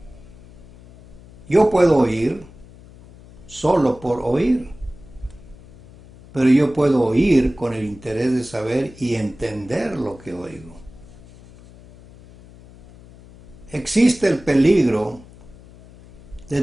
Yo puedo oír solo por oír, pero yo puedo oír con el interés de saber y entender lo que oigo. Existe el peligro de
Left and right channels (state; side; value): noise; left; hum, 21 dB below the sound